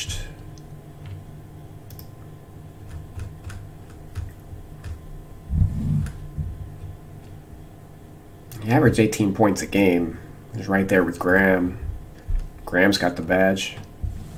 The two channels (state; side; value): identical; both; correlation 1.00